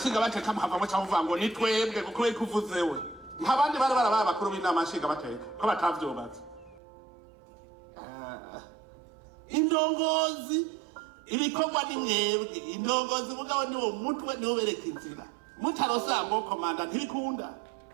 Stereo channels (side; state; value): left; drops out; at 6.8 s